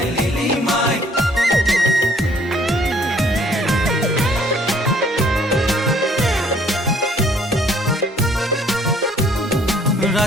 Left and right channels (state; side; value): normal; both; correlation 0.60